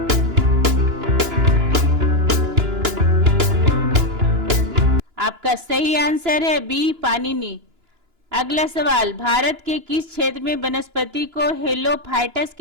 आपका सही आंसर है बी पाणिनि। अगला सवाल, भारत के किस क्षेत्र में वनस्पति को हेलोफाइटस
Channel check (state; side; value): late; left; 2.9 ms